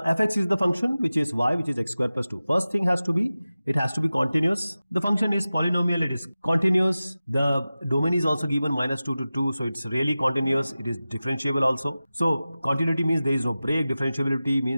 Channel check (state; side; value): inverted; both; correlation -0.96